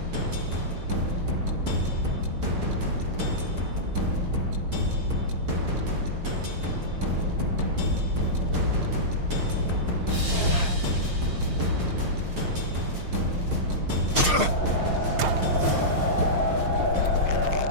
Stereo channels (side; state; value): left; late; 6.5 ms